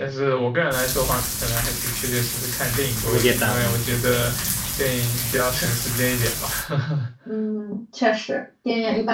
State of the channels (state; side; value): identical; both; correlation 1.00